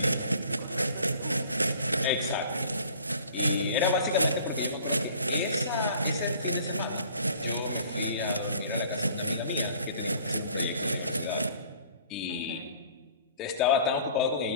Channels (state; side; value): inverted; both; correlation -0.51